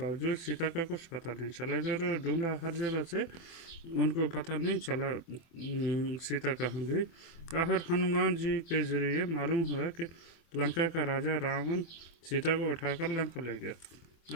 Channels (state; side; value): late; right; 24 ms